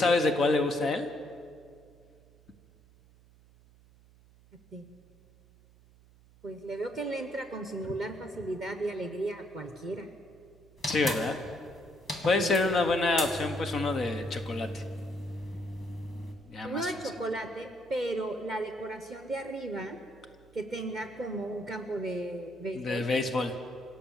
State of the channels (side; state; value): right; noise; hum, 26 dB below the sound